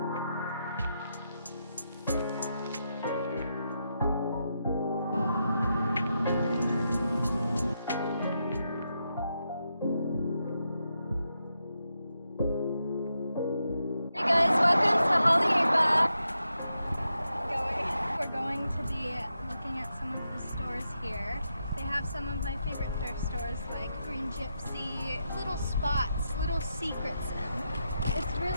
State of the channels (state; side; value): inverted; both; correlation -0.84